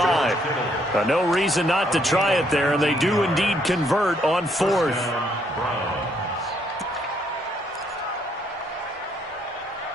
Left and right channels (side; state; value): both; normal; correlation 0.70